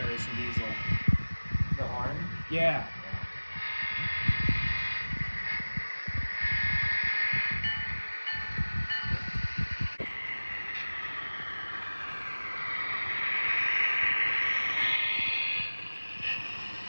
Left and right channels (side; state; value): both; inverted; correlation -1.00